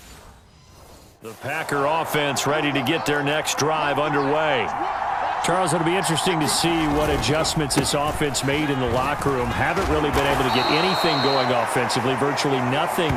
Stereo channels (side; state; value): both; identical; correlation 1.00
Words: The Packer offense ready to get their next drive underway. Charles, it'll be interesting to see what adjustments this offense made in the locker room. Haven't really been able to get anything going offensively, virtually nothing